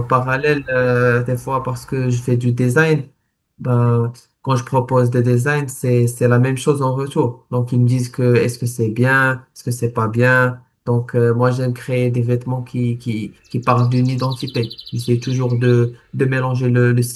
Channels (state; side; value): identical; both; correlation 1.00